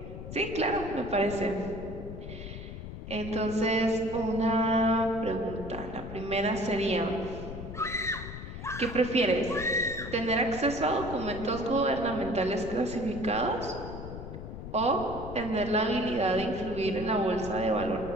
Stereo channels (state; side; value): noise; left; rumble, 10 dB below the sound